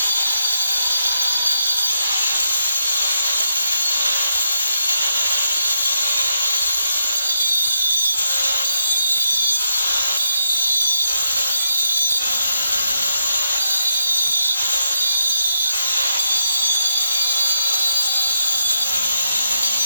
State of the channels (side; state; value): both; inverted; correlation -0.80